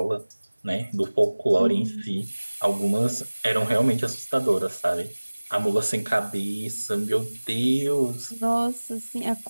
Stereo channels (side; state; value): both; inverted; correlation -1.00